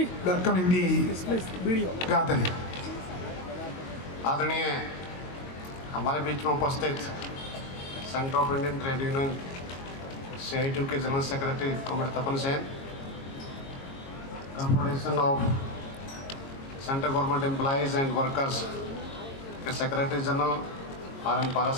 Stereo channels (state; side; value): late; right; 22 ms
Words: welcoming the gathering. आदरणीय हमारे बीच में उपस्थित Centre of Indian Trade Union CITU के general secretary comrade Tapan Sen, Confederation of Central Government Employees and Workers के secretary general RN